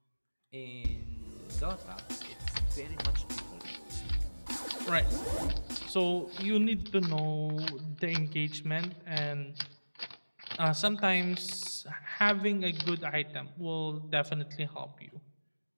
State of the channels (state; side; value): inverted; both; correlation -1.00